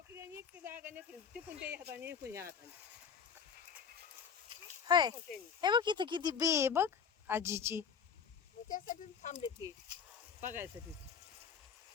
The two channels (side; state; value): right; quieter; 6.7 dB